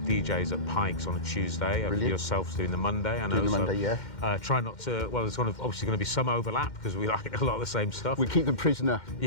DJs at Pikes on a Tuesday. Yourself's doing the Monday. I know. Doing the Monday, yeah. Try not to. Well, there's obviously going to be some overlap because we like a lot of the same stuff. We keep them prisoner.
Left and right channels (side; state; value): right; late; 2.1 ms